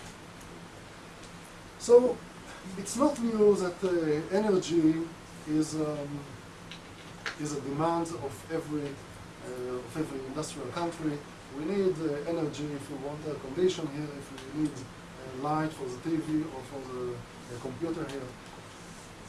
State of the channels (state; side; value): identical; both; correlation 1.00